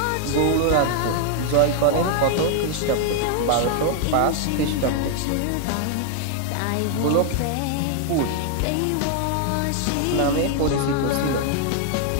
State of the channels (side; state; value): both; different; correlation 0.00